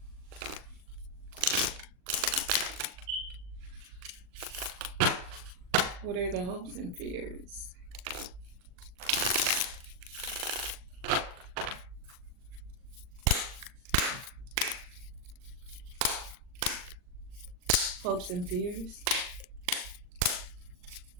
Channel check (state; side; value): late; left; 39 ms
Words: What are the hopes and fears? Hopes and fears.